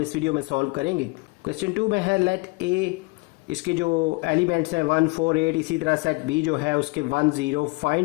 इस वीडियो में सॉल्व करेंगे। क्वेश्चन 2 में है लेट ए, इसके जो एलिमेंट्स हैं 1 4 8, इसी तरह सेट बी जो है उसके 1 0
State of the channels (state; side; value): quieter; right; 26.6 dB